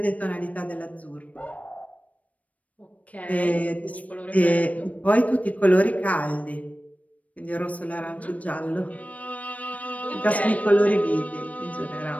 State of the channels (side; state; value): right; late; 0.068 ms